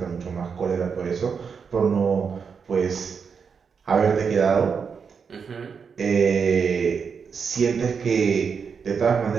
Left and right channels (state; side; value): quieter; left; 6.1 dB